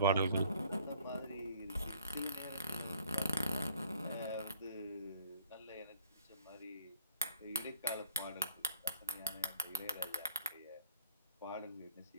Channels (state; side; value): inverted; both; correlation -0.57